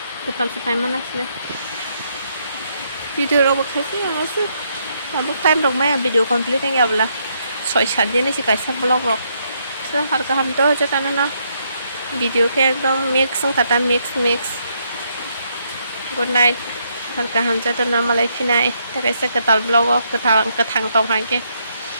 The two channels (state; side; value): inverted; both; correlation -0.75